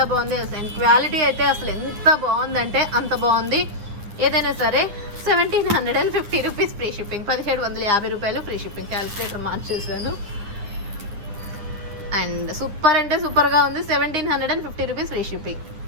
బాగుంది. అండ్ క్వాలిటీ అయితే అసలు ఎంత బాగుందంటే అంత బాగుంది. ఏదైనా సరే 1750 రూపీస్ ఫ్రీ షిప్పింగ్, 1750 రూపాయలు ఫ్రీ షిప్పింగ్. క్యాలిక్యులేటర్ మార్చేసాను. అండ్ సూపర్ అంటే సూపర్గా ఉంది. 1750 రూపీస్ ఫ్రీ షిప్పింగ్,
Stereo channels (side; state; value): left; late; 9.8 ms